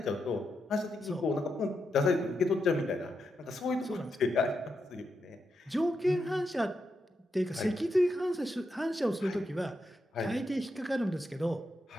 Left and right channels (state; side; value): normal; both; correlation 0.84